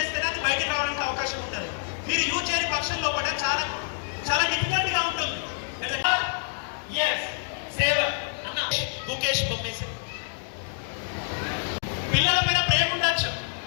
అది బయటకు రావడానికి అవకాశం ఉంటుంది. మీరు యూజ్ చేయని పక్షంలో కూడా చాలా చాలా డిఫికల్ట్ గా ఉంటుంది. గుకేష్ బొమ్మేసి పిల్లల పైన ప్రేమ ఉండొచ్చు,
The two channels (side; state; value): right; silent; digital silence